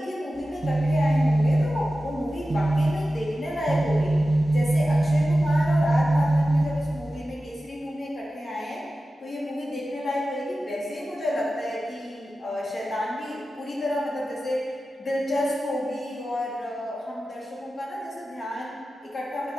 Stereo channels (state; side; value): normal; both; correlation 0.94